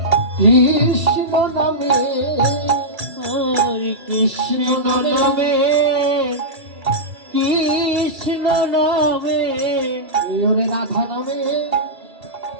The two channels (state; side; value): late; left; 2.3 ms